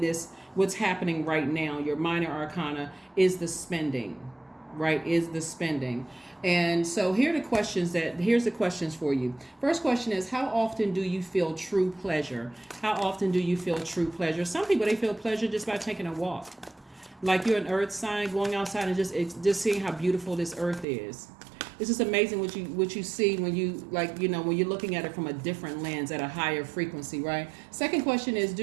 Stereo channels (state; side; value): drops out; left; at 20.9 s